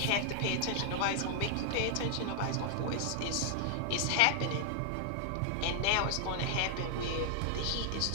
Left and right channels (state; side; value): different; both; correlation -0.01